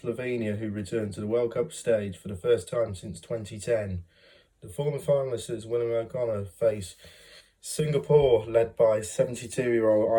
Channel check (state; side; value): identical; both; correlation 1.00